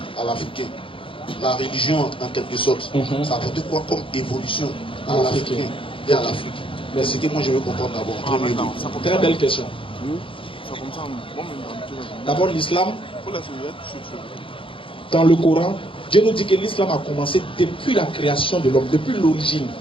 La religion, en quelque sorte, ça a apporté quoi comme évolution à l'Africain et à l'Afrique? Mais c'est ce que moi je veux comprendre d'abord. Très belle question. D'abord, l'islam, dans le Coran, Dieu nous dit que l'islam a commencé depuis la création de l'homme, depuis l'origine.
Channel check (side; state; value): right; late; 0.25 ms